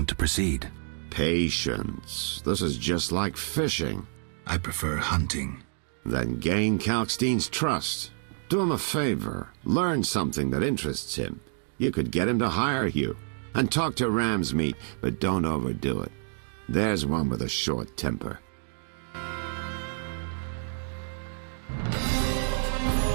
to proceed? Patience. This is just like fishing. I prefer hunting. Then gain Kalkstein's trust. Do him a favor. Learn something that interests him. You could get him to hire you. And talk to Ramsmeet, but don't overdo it. There's one with a short temper.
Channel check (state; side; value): silent; left; digital silence